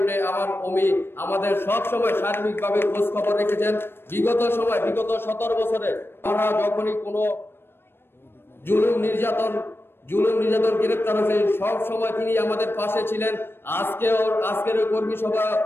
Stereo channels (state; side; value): late; right; 0.11 ms